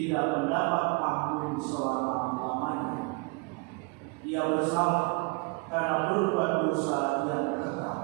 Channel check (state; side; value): quieter; left; 30.4 dB